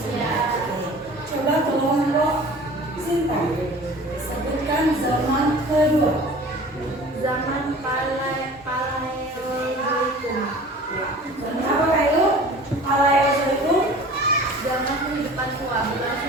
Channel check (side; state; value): both; normal; correlation 0.43